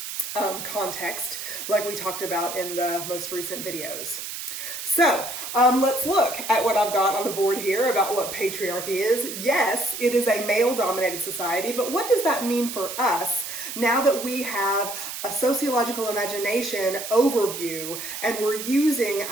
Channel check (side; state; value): right; noise; hiss, 7 dB below the sound